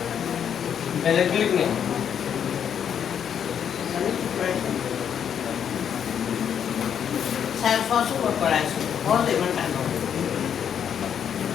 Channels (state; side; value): quieter; right; 8.4 dB